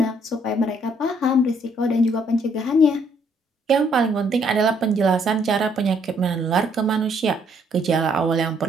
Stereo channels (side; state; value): both; normal; correlation 0.68